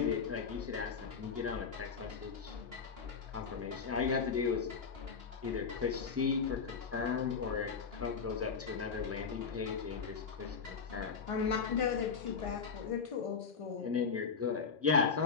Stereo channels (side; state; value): right; quieter; 5.7 dB